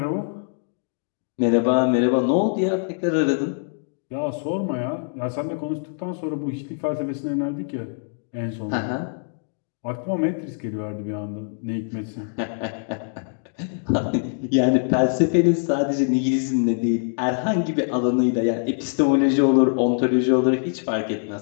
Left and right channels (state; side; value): silent; right; digital silence